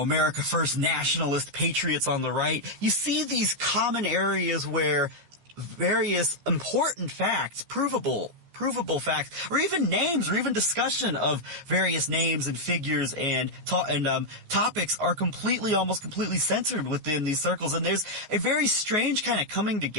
First nationalist patriots on the right. You see these common areas where various important facts, provable facts, or even names, or even discussion of various names and figures and topics are almost completely censored within these circles. And there's a very strange kind of coming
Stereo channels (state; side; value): late; left; 14 ms